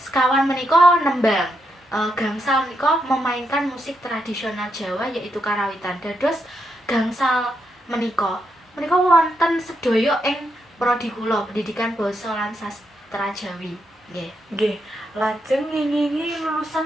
menika nembang. Gangsal menika memainkan musik tradisional Jawa yaitu karawitan. Dados gangsal menika wonten sedaya ing prodi kula Pendidikan Basa lan Sastra Jawi. Nggih. Nggih, lajeng ngingingi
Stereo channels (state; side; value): normal; both; correlation 0.81